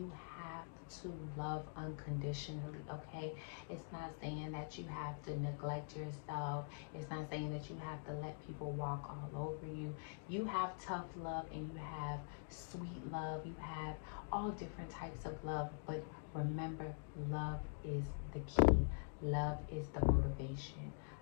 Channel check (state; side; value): silent; right; digital silence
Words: have to love unconditionally, okay? It's not saying that you have to neglect yourself. It's not saying that you have to let people walk all over you. You have tough love and you have sweet love. You have all different types of love, but remember, love is the key. Love is the motivation.